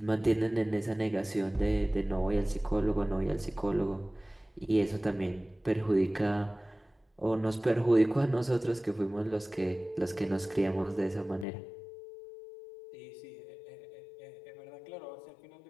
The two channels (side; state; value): right; drops out; at 11.5 s